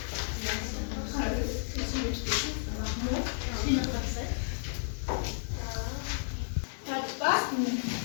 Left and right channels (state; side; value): silent; right; digital silence